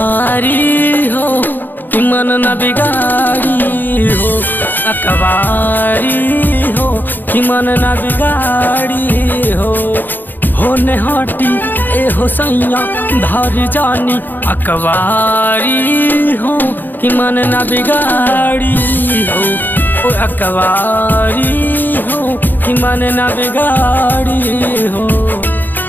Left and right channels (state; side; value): late; right; 0.090 ms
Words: हो कि मन न बिगाड़ी हो। अकबारी हो कि मन न बिगाड़ी हो। होने हाटी ए हो सैया धर जानी अकबारी हो कि मन न बिगाड़ी हो। ओ अकबारी हो कि मन न बिगाड़ी हो।